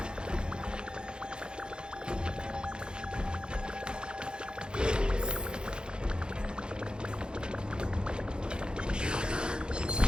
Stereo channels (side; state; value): left; late; 0.049 ms